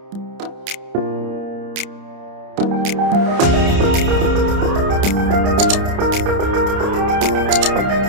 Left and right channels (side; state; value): left; late; 30 ms